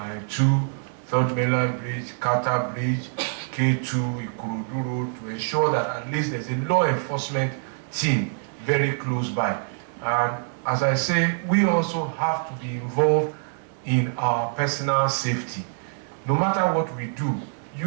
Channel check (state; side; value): silent; left; 58 dB below the other